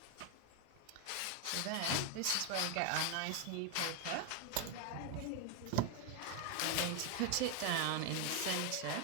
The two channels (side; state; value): both; different; correlation 0.01